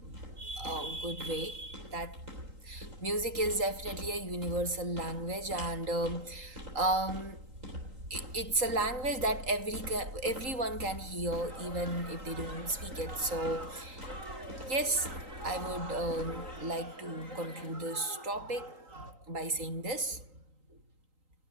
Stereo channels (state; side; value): late; left; 3.8 ms